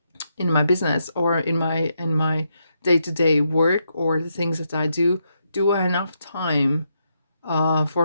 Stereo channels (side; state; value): both; inverted; correlation -0.81